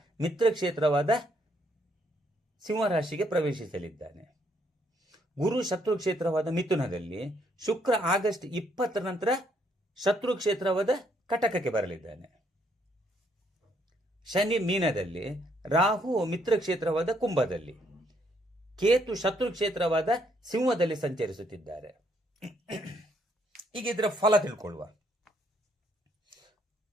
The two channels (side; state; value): both; normal; correlation 0.70